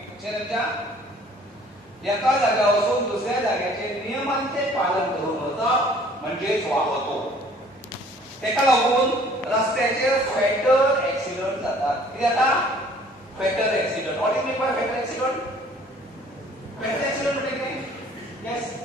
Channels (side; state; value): both; normal; correlation 0.55